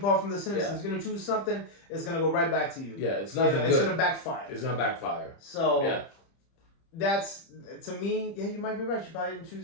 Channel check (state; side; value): late; right; 30 ms